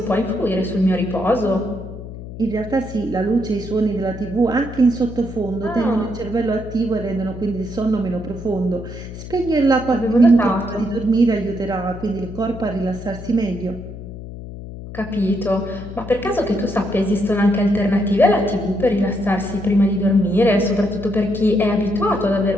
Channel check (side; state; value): left; noise; hum, 12 dB below the sound